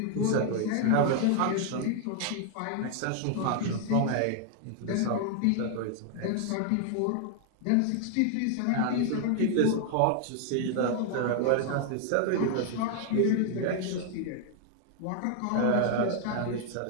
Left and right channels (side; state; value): both; different; correlation 0.00